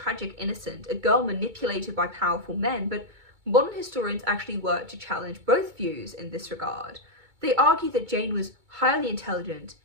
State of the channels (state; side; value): late; left; 2.2 ms